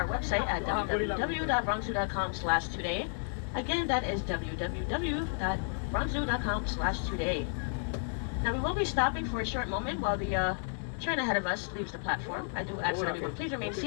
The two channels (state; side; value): silent; right; 56 dB below the other